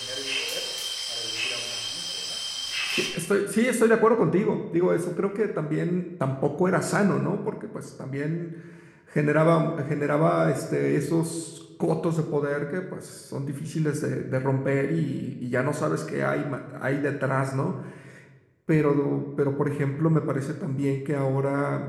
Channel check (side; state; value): both; identical; correlation 1.00